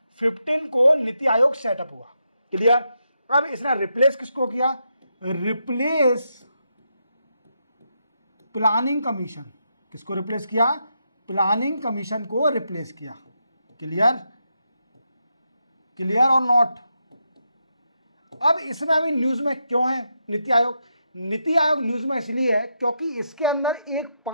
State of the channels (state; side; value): inverted; both; correlation -0.83